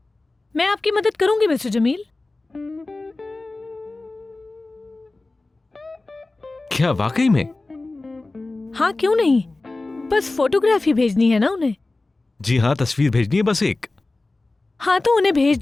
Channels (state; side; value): quieter; right; 3.2 dB